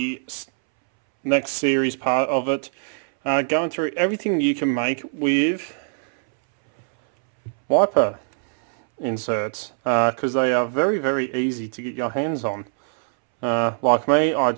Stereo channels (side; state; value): left; silent; 64 dB below the other